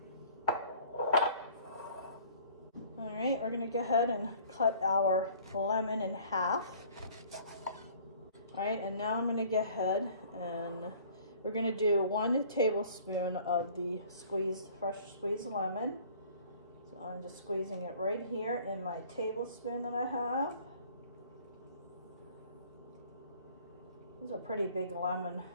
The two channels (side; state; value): both; inverted; correlation -0.52